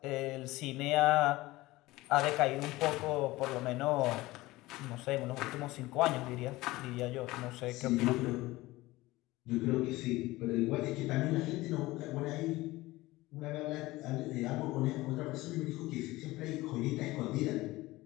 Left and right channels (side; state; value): right; quieter; 19.1 dB